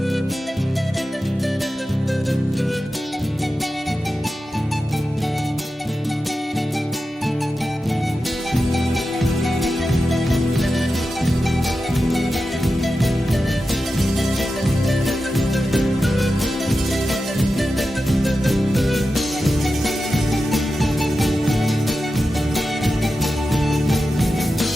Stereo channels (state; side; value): normal; both; correlation 0.91